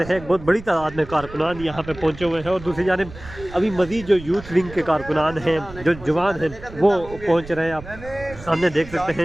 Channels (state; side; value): noise; right; rumble, 16 dB below the sound